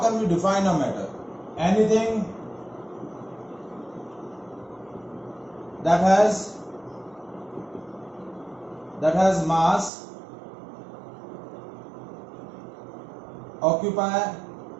we define a matter? Anything that has mass, occupy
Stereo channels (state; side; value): drops out; left; at 9.9 s